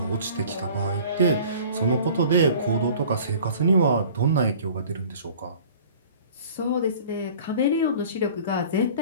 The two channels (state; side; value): inverted; both; correlation -0.47